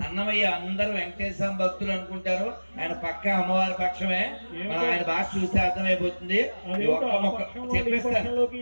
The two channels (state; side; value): inverted; both; correlation -1.00